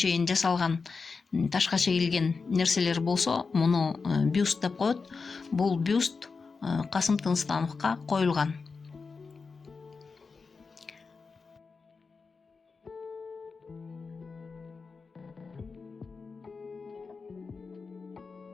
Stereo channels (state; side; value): quieter; right; 4.7 dB